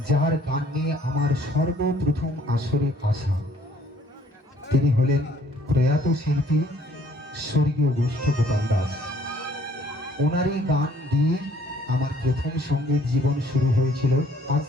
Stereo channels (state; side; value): normal; both; correlation 0.60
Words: যার গান নিয়ে আমার সর্বপ্রথম আসরে আসা, তিনি হলেন প্রয়াত শিল্পী স্বর্গীয় গোষ্ঠ গোপাল দাস। ওনারই গান দিয়ে আমার প্রথম সঙ্গীত জীবন শুরু হয়েছিল, আজ